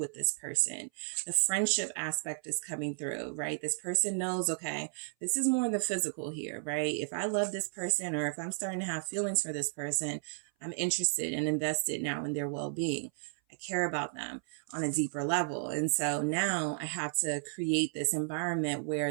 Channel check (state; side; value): silent; left; 56 dB below the other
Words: this person. The friendship aspect is coming through, right? This person knows, okay, this is more the physical here, right? If I love this person, or if I'm starting to have feelings for this person, I'm interested and invested now in their well-being. I care about them on a deeper level. And so now I have to create this environment